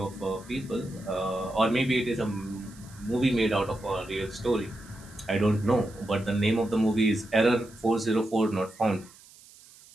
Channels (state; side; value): noise; right; hiss, 23 dB below the sound